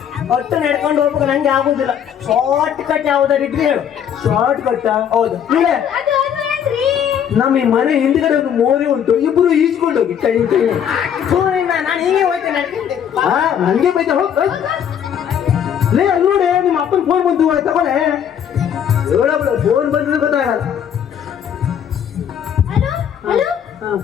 ಒಟ್ಟು ನಡ್ಕೊಂಡು ಹೋಗ್ಬೇಕು, ನಂಗೆ ಆಗುದಿಲ್ಲ. ಶಾರ್ಟ್ ಕಟ್ ಯಾವ್ದಾರು ಇದ್ರೆ ಹೇಳು. Short cut? ಹೌದು. ಇಲ್ಲ, ನಮ್ಮ ಈ ಮನೆ ಹಿಂದ್ಗಡೆ ಒಂದು ಮೋರಿ ಉಂಟು, ಇಬ್ರು ಈಜ್ಕೊಂಡು ಹೋಗಿ ಕೈ ನಾನು ಹೀಗೆ ಹೋಗ್ತೇನೆ ನಡ್ಕೊಂಡು. ನಂಗೆ ಬೈತ ಹೋಗ್. ಲೇ ಅಲ್ಲಿ ನೋಡಿ, ನಿಮ್ಮ ಅಪ್ಪನ ಫೋನ್ ಬಂತು ತಗೊಳ್ಳೆ. ಹೇಳಬಿಡ, ಫೋನ್ ಬಂದ್ರೆ ಗೊತ್ತಾಗಲ್ಲ. ಹಲೋ,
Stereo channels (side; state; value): right; quieter; 8.7 dB